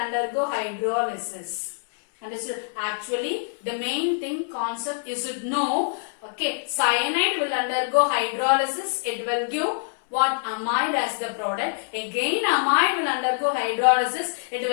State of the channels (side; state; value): right; silent; 62 dB below the other